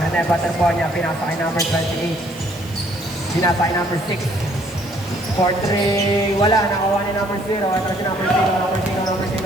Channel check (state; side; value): noise; right; hiss, 22 dB below the sound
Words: Rene, battle ball niya. Pinatake number 28. Pinatake number 6. 4-3, wala, nakuha ni number 0. Ito si number 0, number 0, number